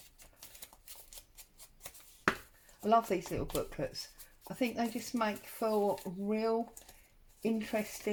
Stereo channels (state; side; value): identical; both; correlation 1.00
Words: I love these little booklets. I think they just make for real